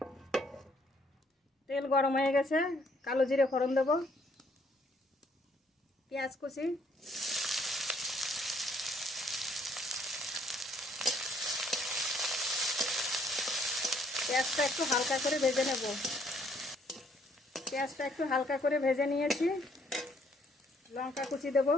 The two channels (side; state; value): both; normal; correlation 0.66